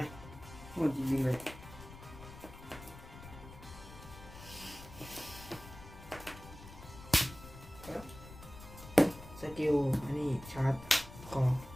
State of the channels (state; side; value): noise; left; rumble, 16 dB below the sound